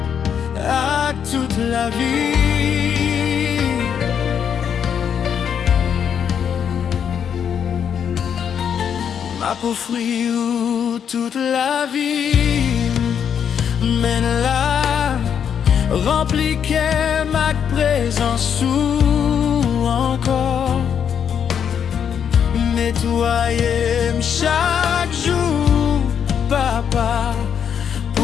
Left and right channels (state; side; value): quieter; right; 8.0 dB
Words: À toute la vie, aux fruits où toute la vie mène là, rempli qu'est ma présence ou encore nettoyer chaque jour, papa,